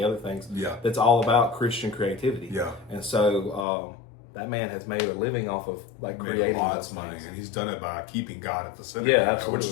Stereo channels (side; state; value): right; drops out; at 3.7 s